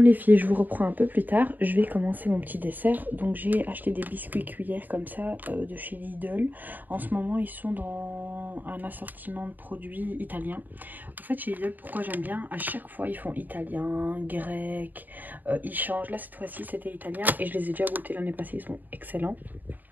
filles, je vous reprends un peu plus tard. Je vais commencer mon petit dessert. Donc j'ai acheté des biscuits cuillères comme ça de chez Lidl. En ce moment, ils sont dans un assortiment de produits italiens. En fait, chez Lidl, pourquoi j'aime bien, à chaque fois, ils font italien, grec. Ils changent. Là, cette fois-ci, c'était italien. Et je les ai déjà goûtés l'année passée. Ils sont excellents.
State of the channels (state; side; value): late; left; 0.087 ms